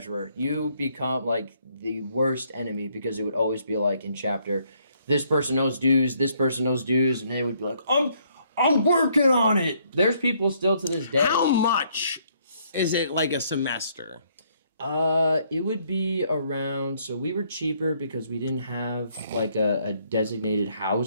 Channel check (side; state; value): both; inverted; correlation -0.69